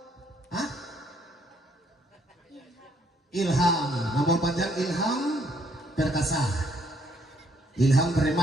Hah? Ilham. Nomor panjang Ilham Perkasa. Ilham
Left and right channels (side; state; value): both; normal; correlation 0.68